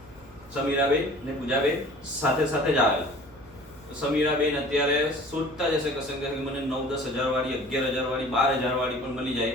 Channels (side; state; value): right; noise; hum, 25 dB below the sound